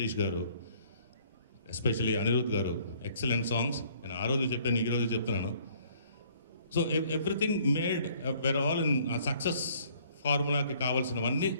గారు, ఎస్పెషలీ అనిరుద్ గారు, ఎక్సలెంట్ సాంగ్స్. నేను ఆ రోజు చెప్పాను, ఈ రోజు చెప్తున్నాను. So everything made where all in success ఫార్ములాకి కావాల్సినవన్నీ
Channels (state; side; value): inverted; both; correlation -0.60